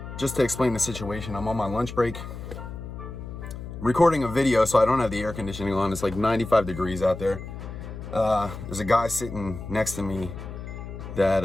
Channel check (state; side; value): noise; left; hum, 10 dB below the sound